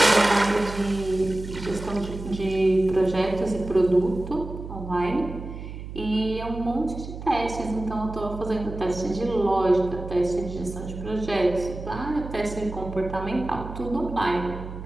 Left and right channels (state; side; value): noise; right; hum, 10 dB below the sound